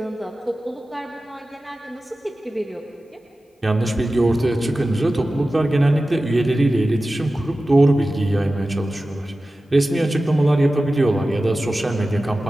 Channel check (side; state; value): both; normal; correlation 0.95